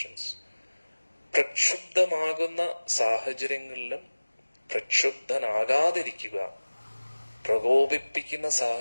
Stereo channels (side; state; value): both; inverted; correlation -1.00